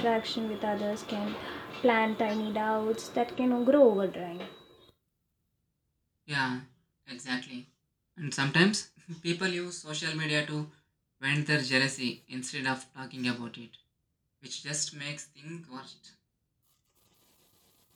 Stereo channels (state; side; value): identical; both; correlation 1.00